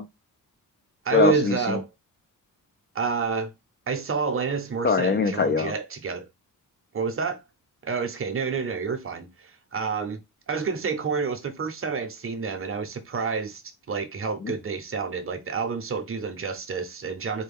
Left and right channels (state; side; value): normal; both; correlation -0.01